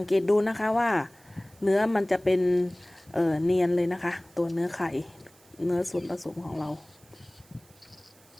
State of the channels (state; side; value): noise; right; hiss, 28 dB below the sound